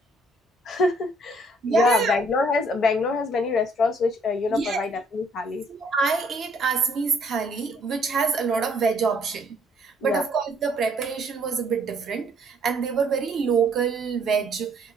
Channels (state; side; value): normal; both; correlation 0.64